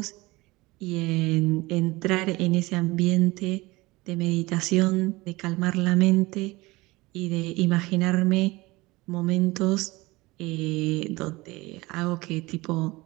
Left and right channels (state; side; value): quieter; left; 21.5 dB